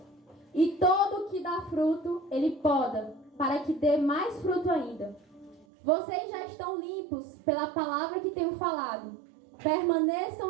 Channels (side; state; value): left; drops out; at 5.7 s